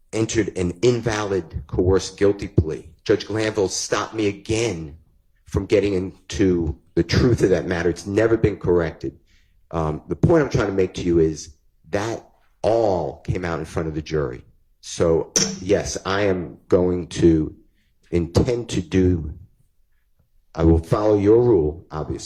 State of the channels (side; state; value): both; identical; correlation 1.00